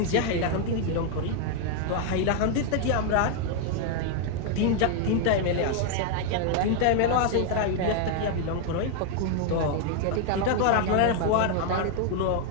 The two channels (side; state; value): both; different; correlation 0.00